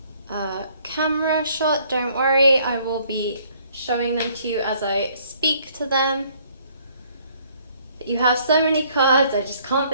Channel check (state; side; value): inverted; both; correlation -0.63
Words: camera shot, don't worry, I will be showing them to you as I speak to them. But you have so many cards, I just can't